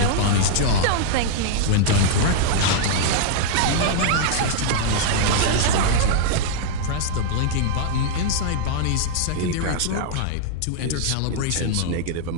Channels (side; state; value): both; different; correlation -0.01